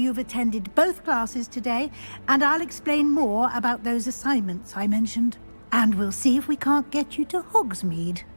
attended both classes today, and I'll explain more about those assignments I mentioned. And we'll see if we can't get you to Hogsmeade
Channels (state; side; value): inverted; both; correlation -1.00